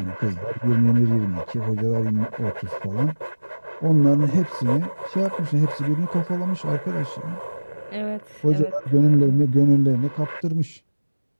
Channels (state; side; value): inverted; both; correlation -1.00